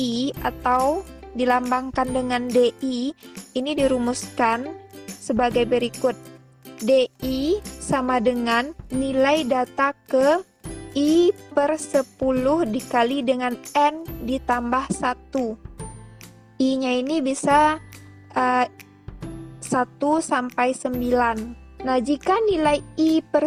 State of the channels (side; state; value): both; identical; correlation 1.00